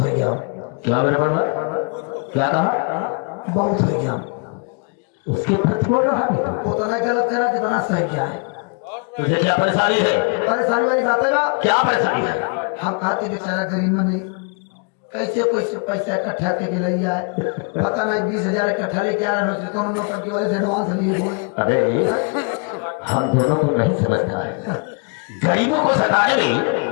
गया। क्या मेरे पर क्या कहा? बहुत हो गया। उसके प्रति बोल रहा है तू? वो तो नहीं गलत करा कितना सही क्या है। तुझे क्या परेशानी है? परेशानी वाली बात है ना। क्या परेशानी है? हम कहते बेचारा गरीब में नहीं कैसे कैसे पैसा इकट्ठा करके ले आए। पता नहीं 20,000 इकट्ठा लेके आ रहे हैं कौन नौकर की वजह से एडवांस लिए बोल। अरे हम दोनों को नहीं समझता है। गरीबों को सताने में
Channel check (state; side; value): quieter; right; 36.4 dB